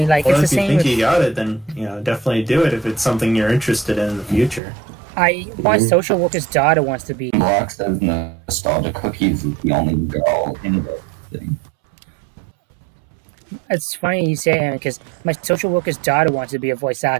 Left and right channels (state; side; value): drops out; left; at 4.6 s